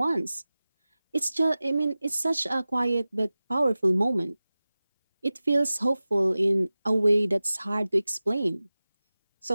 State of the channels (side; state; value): both; inverted; correlation -0.97